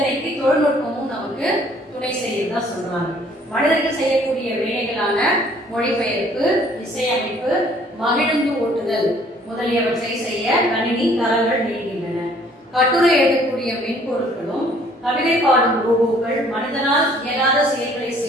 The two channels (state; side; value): normal; both; correlation 0.59